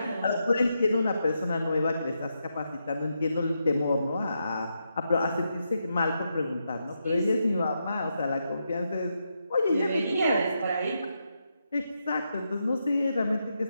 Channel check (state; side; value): inverted; both; correlation -0.84